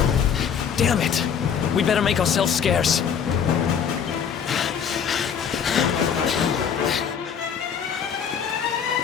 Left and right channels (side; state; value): right; quieter; 7.5 dB